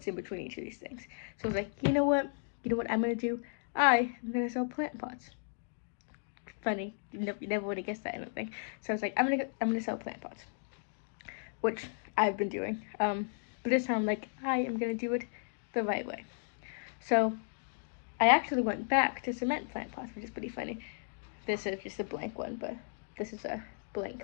in between each of these things. So I was like, you know what? You know what I'm gonna do? I am gonna sell plant pots. Funny, you never would have guessed that, I don't think. So I was like, I'm gonna sell plant pots, which I've been doing. But this time, I'm like, I am gonna do it the right way. So I actually went back to cement plant pots, which is pretty funny. This is just a blank one, but this is a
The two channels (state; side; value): silent; right; digital silence